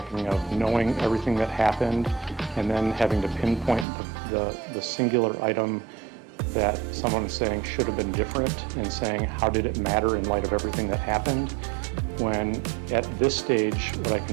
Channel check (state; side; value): drops out; left; at 3.9 s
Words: of knowing everything that happened and then having to pinpoint the singular item that someone is saying should have been different, and saying how did it matter in light of everything that happened, when at this stage what I